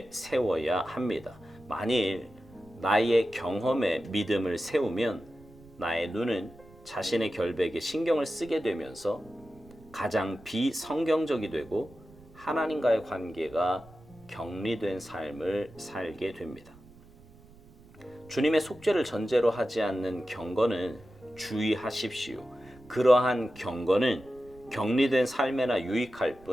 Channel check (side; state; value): right; noise; rumble, 24 dB below the sound